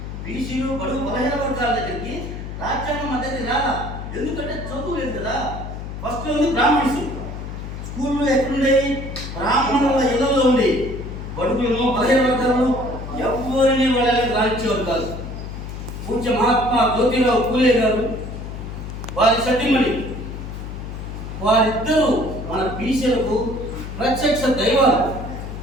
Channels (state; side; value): noise; left; hum, 8 dB below the sound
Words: బీసీలు బడుగు బలహీన వర్గాల దగ్గరికి రాజ్యాంగం మన దగ్గరికి రాలా. ఎందుకంటే చదువు లేదు కదా. ఫస్ట్ ఉంది బ్రాహ్మణ్స్, స్కూళ్ళు ఎక్కడుండేవి, బ్రాహ్మణుల ఇళ్లలో ఉండేవి. బడుగులను బలహీన వర్గాలను ఎవరిని వాళ్ళకి రానిచ్చేవారు కాదు. పూజ్య మహాత్మా జ్యోతిరావు పూలే గారు, వారి సతీమణి, వారిద్దరూ మన బీసీలకు ప్రత్యక్ష దైవాలు.